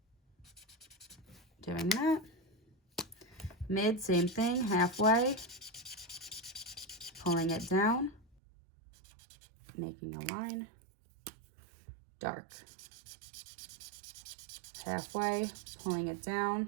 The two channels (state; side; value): drops out; left; at 8.3 s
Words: doing that. Mid, same thing, halfway, pulling it down, making a line. Dark, halfway, pulling it